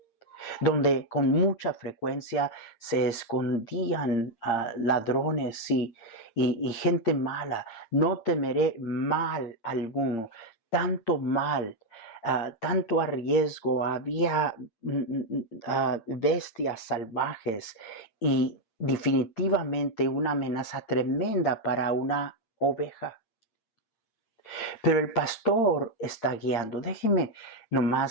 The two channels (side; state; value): right; late; 8.7 ms